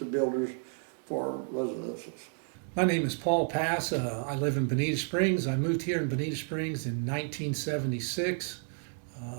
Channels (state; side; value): silent; left; 57 dB below the other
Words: builders for residences. My name is Paul Pass. I live in Bonita Springs. I moved here in Bonita Springs in 1976.